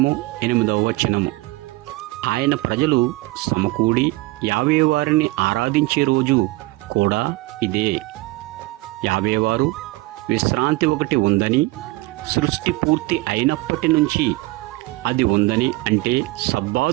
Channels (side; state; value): left; quieter; 21.0 dB